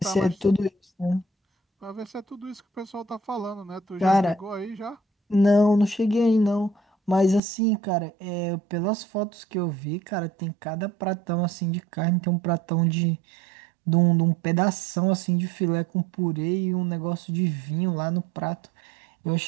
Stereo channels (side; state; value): left; drops out; at 7.4 s